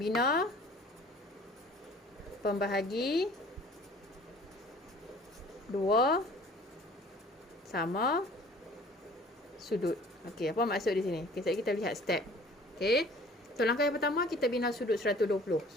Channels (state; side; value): normal; both; correlation 0.51